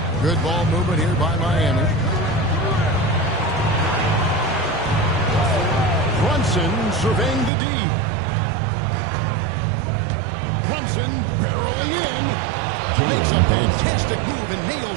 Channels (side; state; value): left; drops out; at 7.5 s